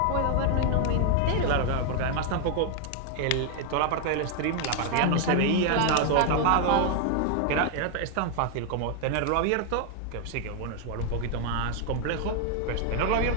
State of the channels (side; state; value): both; different; correlation 0.00